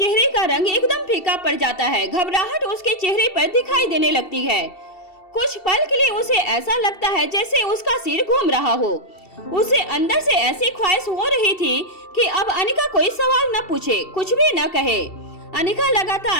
का रंग एकदम फीका पड़ जाता है। घबराहट उसके चेहरे पर दिखाई देने लगती है। कुछ पल के लिए उसे ऐसा लगता है जैसे उसका सिर घूम रहा हो। उसे अंदर से ऐसी ख्वाहिश हो रही थी कि अब अनिका कोई सवाल न पूछे, कुछ भी न कहे। अनिका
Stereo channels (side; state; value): right; late; 2.7 ms